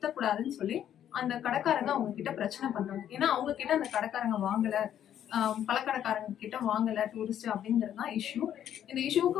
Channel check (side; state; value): right; quieter; 10.3 dB